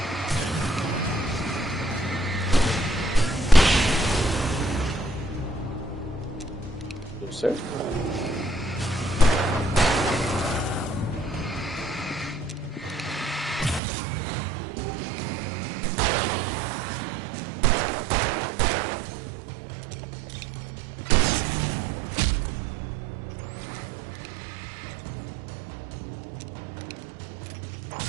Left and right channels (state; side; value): drops out; left; at 13.8 s